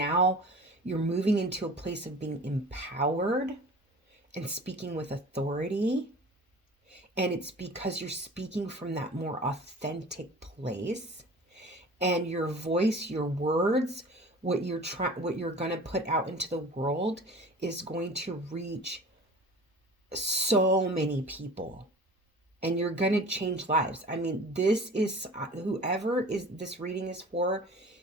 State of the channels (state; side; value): normal; both; correlation 0.41